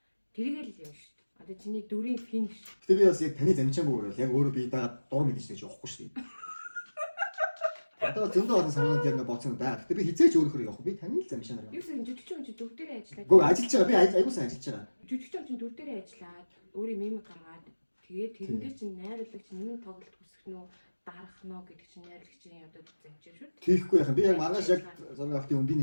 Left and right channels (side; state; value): both; inverted; correlation -1.00